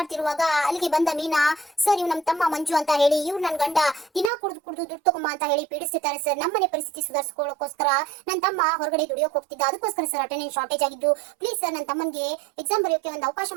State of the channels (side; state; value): left; drops out; at 4.3 s